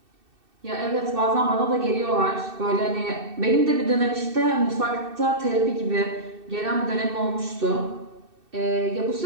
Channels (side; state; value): left; late; 2.6 ms